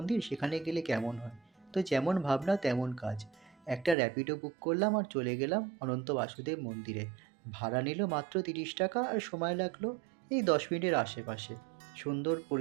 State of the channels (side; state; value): left; drops out; at 4.0 s